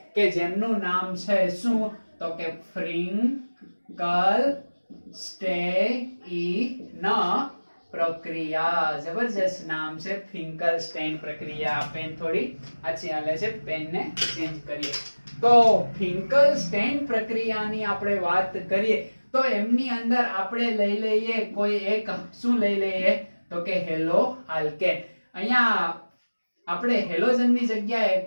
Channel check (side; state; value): both; inverted; correlation -1.00